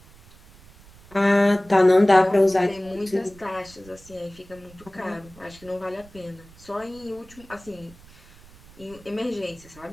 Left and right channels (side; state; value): right; noise; rumble, 24 dB below the sound